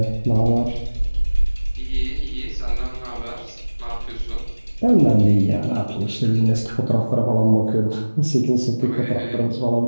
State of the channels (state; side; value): inverted; both; correlation -1.00